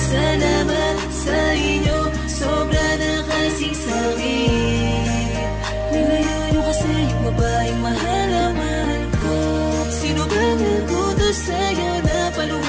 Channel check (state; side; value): identical; both; correlation 1.00